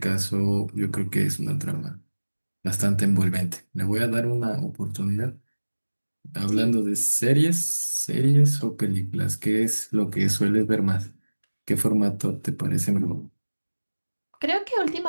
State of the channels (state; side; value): inverted; both; correlation -1.00